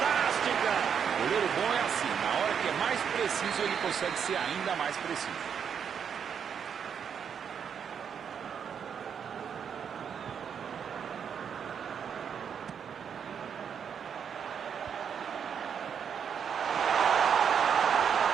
Goleiro bom é assim. Na consegue ser ainda mais preciso.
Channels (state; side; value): quieter; left; 7.5 dB